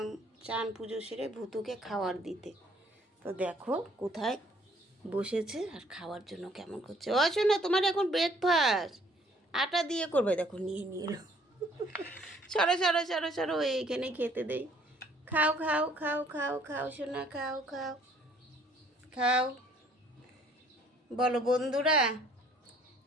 চান পুজো সেরে ভুতুকে খাওয়ার দিতে। তো দেখো কোথায় বসেছে আর খাওয়ার জন্য কেমন করছে। ও শোনো, তোমার এখন ব্রেকফাস্ট আটা দিয়ে করবে। দেখো নিয়ে নিয়ে এলো। সরো সরো সরো সরো, এইখানে খেতে দেই। খাও খাও খাও খাও খাও সোনা, খাও খাও খাও। বলো বন্ধুরা,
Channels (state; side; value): normal; both; correlation 0.60